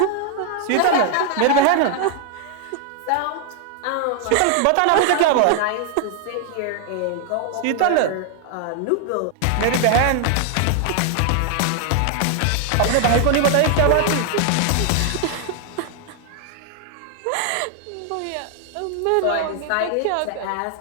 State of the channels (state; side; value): different; both; correlation 0.00